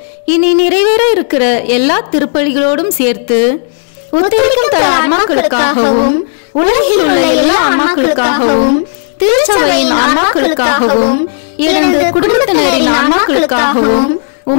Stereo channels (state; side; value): silent; right; digital silence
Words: இனி நிறைவேற இருக்கிற எல்லா திருப்பலிகளோடும் சேர்த்து உத்தரிக்கும் தல ஆன்மாக்களுக்காகவும் உலகில் உள்ள எல்லா ஆன்மாக்களுக்காகவும் திருச்சபையின் ஆன்மாக்களுக்காகவும் எனது குடும்பத்தினரின் ஆன்மாக்களுக்காகவும்